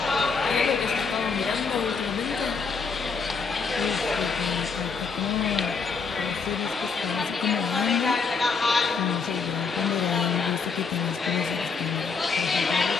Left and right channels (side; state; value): right; quieter; 5.1 dB